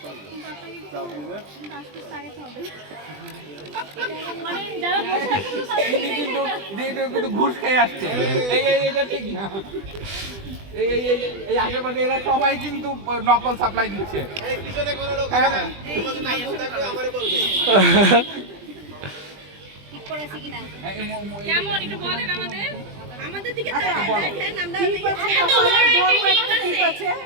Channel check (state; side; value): late; left; 20 ms